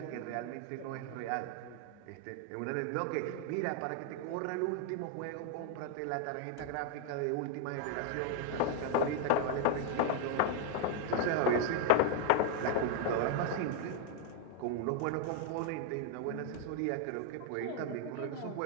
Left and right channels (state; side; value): different; both; correlation 0.00